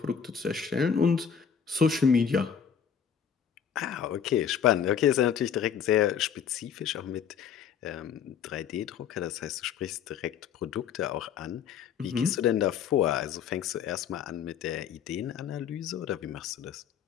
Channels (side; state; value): right; quieter; 7.7 dB